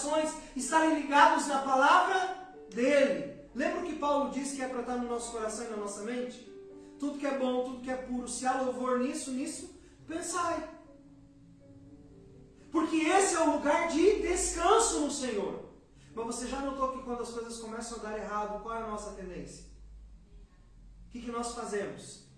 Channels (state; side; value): identical; both; correlation 1.00